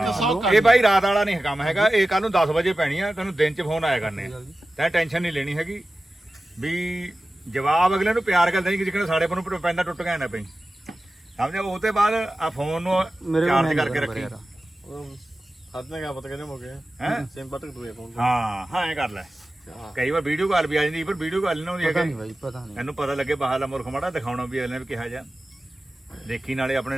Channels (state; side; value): normal; both; correlation 0.95